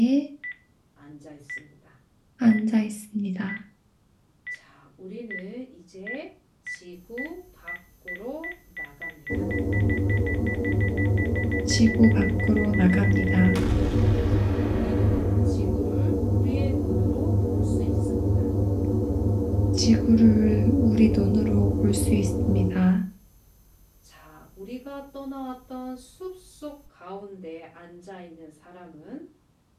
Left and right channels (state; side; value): identical; both; correlation 1.00